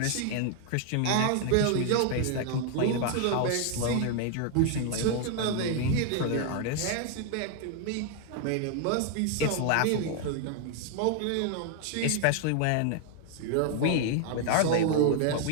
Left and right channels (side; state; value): both; different; correlation 0.00